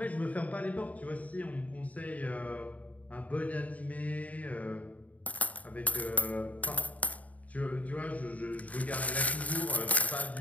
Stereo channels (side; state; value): right; late; 0.070 ms